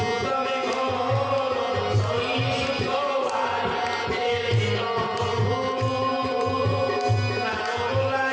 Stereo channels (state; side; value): identical; both; correlation 1.00